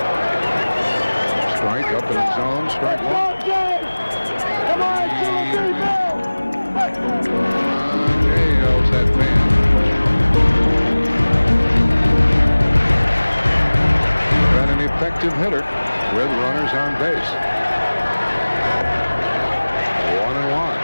Strike up in the zone, strike 1. Come on, Jay yells that fan. Been an effective hitter with runners on base. 1-1.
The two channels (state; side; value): inverted; both; correlation -1.00